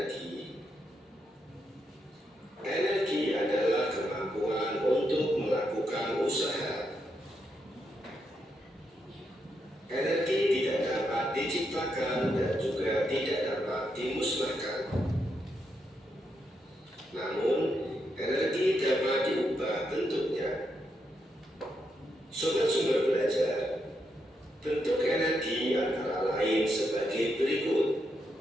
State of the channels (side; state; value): both; normal; correlation 0.81